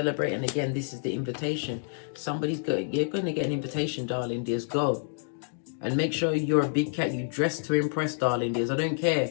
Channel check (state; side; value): silent; right; digital silence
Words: And again, this is the invitation. You're going to get an invitation, darling dears. Go. And make sure you're a big cat. You dress to impress, darling dears. I don't care.